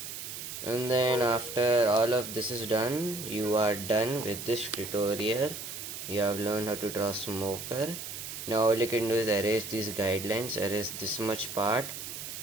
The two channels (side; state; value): right; noise; hiss, 8 dB below the sound